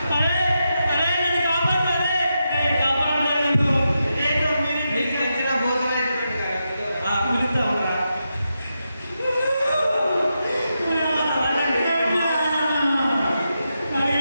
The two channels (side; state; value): both; inverted; correlation -0.87